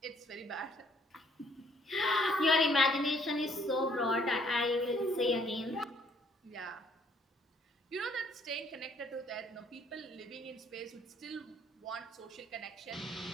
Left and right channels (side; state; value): both; normal; correlation 0.63